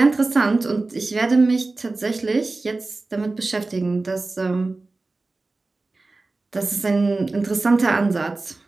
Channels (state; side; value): quieter; left; 3.4 dB